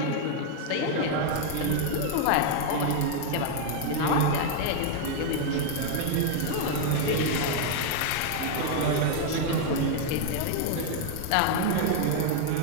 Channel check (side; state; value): both; different; correlation 0.00